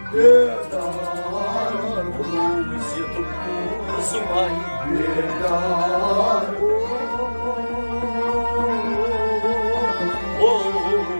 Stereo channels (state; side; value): inverted; both; correlation -1.00